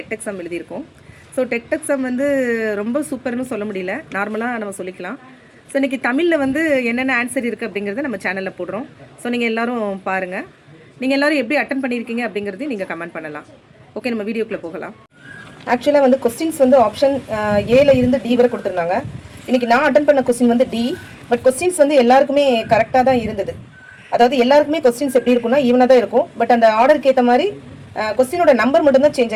எக்ஸாம் எழுதியிருக்கோம். ஸோ டெட் எக்ஸாம் வந்து ரொம்ப சூப்பர்னு சொல்ல முடியல, நார்மலாக நம்ம சொல்லிக்கலாம். ஸோ இன்றைக்கி தமிழில் வந்து என்னென்ன ஆன்சர் இருக்குது அப்படிங்கிறத நம்ம சேனலில் போடுறோம். ஸோ நீங்கள் எல்லோரும் பாருங்கள். நீங்கள் எல்லோரும் எப்படி அட்டன் பண்ணியிருக்கீங்க அப்படிங்கிறதையும் நீங்கள் கமெண்ட் பண்ணலாம். ஓகே, நம்ம வீடியோக்குள்ளே போகலாம். ஆக்சுவலாக வந்து கொஸ்டின்ஸ் வந்து ஆப்ஷன் ஏல இருந்து டி வரை கொடுத்துருந்தாங்க. இன்றைக்கி நான் அட்டன் பண்ண கொஸ்டின் வந்து டி. பட் கொஸ்டின்ஸ் வந்து எல்லாருக்குமே கரெக்டாக தான் இருந்தது. அதாவது எல்லாருக்குமே கொஸ்டின்ஸ் எப்படி இருக்கும்னா ஈவனாக தான் இருக்கும். பட் அந்த ஆர்டருக்கு ஏற்ற மாதிரி கொஸ்டினோட நம்பர் மட்டும்தான் சேஞ்ச்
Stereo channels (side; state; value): both; identical; correlation 1.00